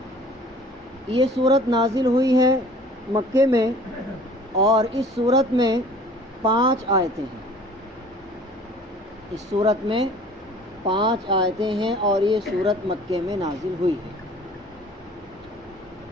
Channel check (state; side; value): normal; both; correlation 0.49